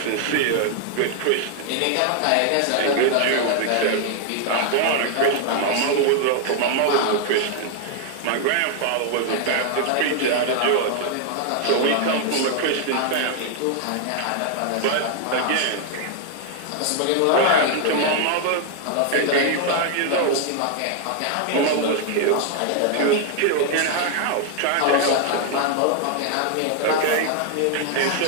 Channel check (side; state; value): both; different; correlation 0.00